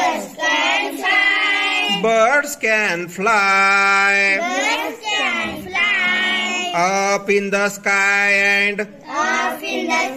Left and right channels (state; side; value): identical; both; correlation 1.00